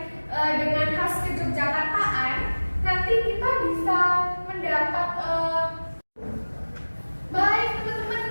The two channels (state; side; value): inverted; both; correlation -1.00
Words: dengan khas kejogjakartaan, nanti kita bisa mendapat baik